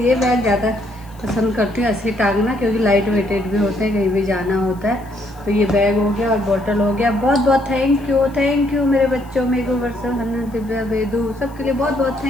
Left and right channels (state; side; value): noise; left; hiss, 28 dB below the sound